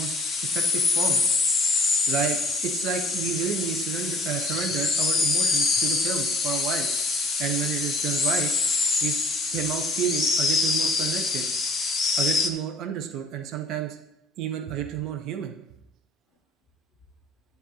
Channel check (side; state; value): both; normal; correlation 0.51